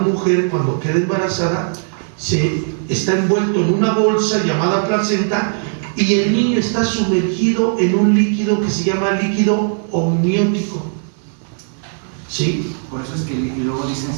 cuando queda embarazada, se está envuelto en una bolsa llamada placenta y el niño está sumergido en un líquido que se llama líquido amniótico. ¿Sí? Por eso es que y luego dicen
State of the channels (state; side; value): silent; left; 61 dB below the other